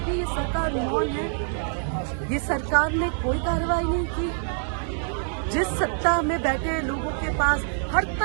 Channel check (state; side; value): silent; left; 61 dB below the other